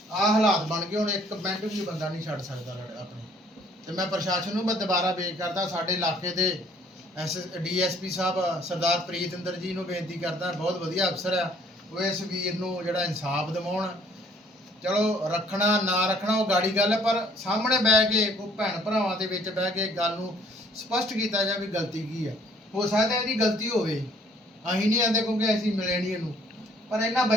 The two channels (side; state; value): both; normal; correlation 0.60